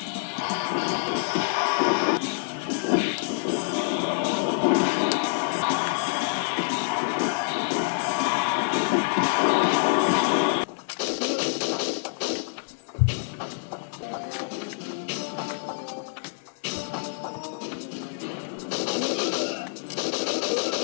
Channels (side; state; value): right; silent; digital silence